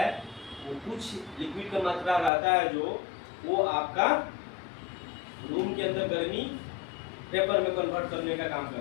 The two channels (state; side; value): drops out; right; at 2.3 s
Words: वो कुछ लिक्विड का मात्रा रहता है जो वो आपका रूम के अंदर गर्मी वेपर में कन्वर्ट करने का काम